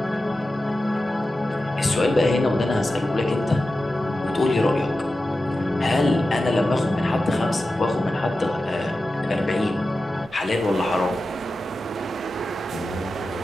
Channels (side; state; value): both; normal; correlation 0.93